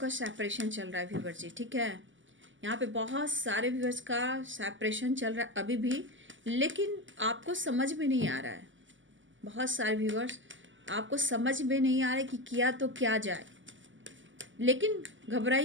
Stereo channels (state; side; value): late; left; 0.55 ms